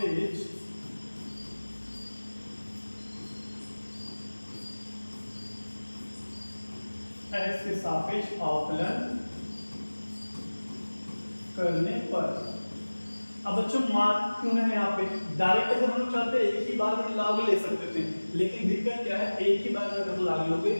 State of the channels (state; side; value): inverted; both; correlation -1.00